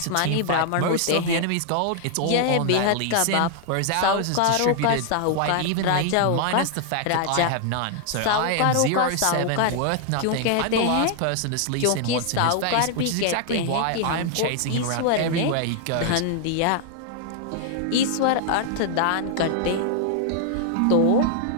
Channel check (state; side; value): different; both; correlation 0.00